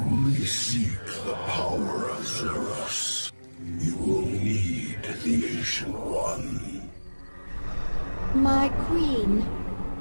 seek the power of Zeros, you will need the Ancient One. My queen,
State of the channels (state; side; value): inverted; both; correlation -1.00